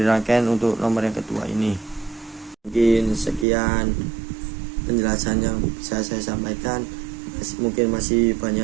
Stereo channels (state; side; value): drops out; left; at 3.5 s